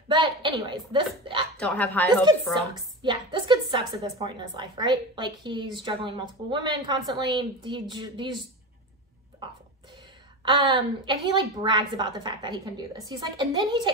But anyways, this... Don't have high hopes for him. Sucks. Yeah, this kid sucks at this point in his life, right? Like, he's juggling multiple women constantly. He's awful. And he, like, brags about the fact that he can do this. He's like... And then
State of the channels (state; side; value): normal; both; correlation 0.25